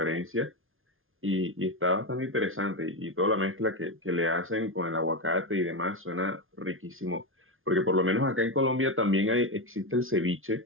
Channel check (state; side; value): late; left; 0.60 ms